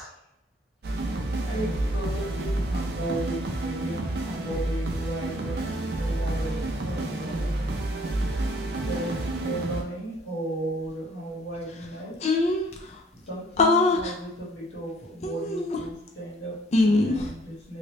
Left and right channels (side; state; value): both; normal; correlation 0.61